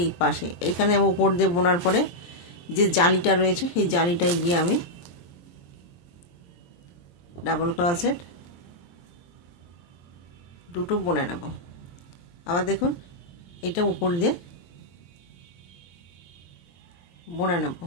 এই পাশে এইখানে আমি উপর দিয়ে বোনার পরে যে জালিটা রয়েছে সেই জালিটায় গিয়ে আমি ডাবল ক্রোশেট দুটো বুনে নেব। আবার দেখুন এটা উপর দিয়ে বুনে নেব,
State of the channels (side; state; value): right; late; 23 ms